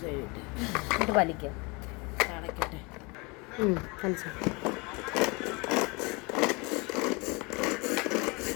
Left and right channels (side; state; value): right; quieter; 28.1 dB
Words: എന്നിട്ട് വലിക്കുക. അടയ്ക്കട്ടെ. വലിച്ചു.